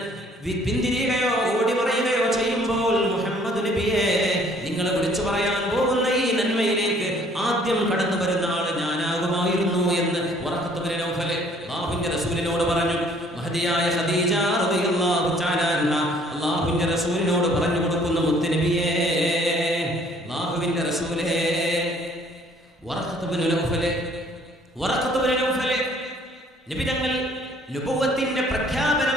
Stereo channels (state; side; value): normal; both; correlation 0.59